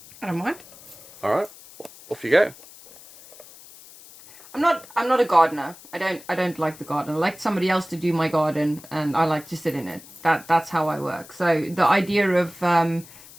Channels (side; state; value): left; noise; hiss, 20 dB below the sound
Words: I don't mind. Alright, off you go. I'm not a gardener. I don't like the garden. I like somebody else to do my garden, and I like to sit in it. That's how I work. So the idea of